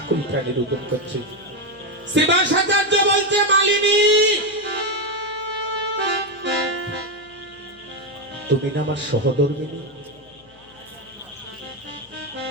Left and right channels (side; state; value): left; noise; hum, 29 dB below the sound